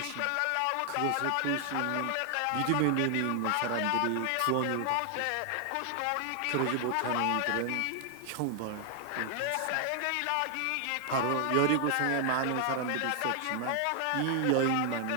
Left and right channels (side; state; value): both; different; correlation 0.00